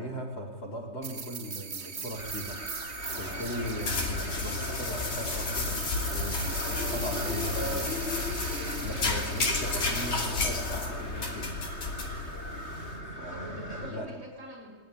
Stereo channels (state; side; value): late; right; 3.2 ms